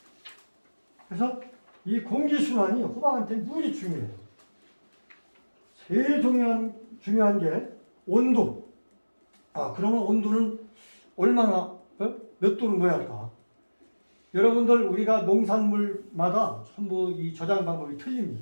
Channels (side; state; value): both; inverted; correlation -1.00